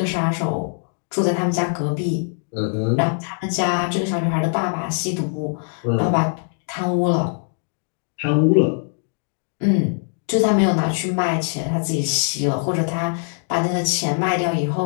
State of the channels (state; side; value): silent; right; 57 dB below the other